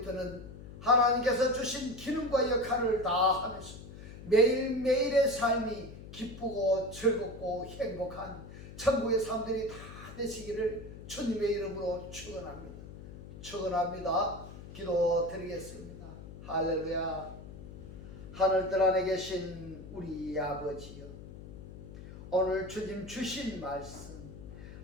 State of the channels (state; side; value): noise; left; hum, 14 dB below the sound